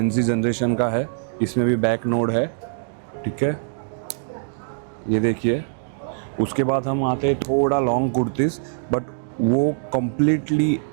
जनरेशन का है. इसमें भी बैक नोड है. ठीक है, ये देखिए. उसके बाद हम आते हैं थोड़ा लॉन्ग कुर्तीज़, बट वो कम्प्लीटली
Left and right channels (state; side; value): silent; left; digital silence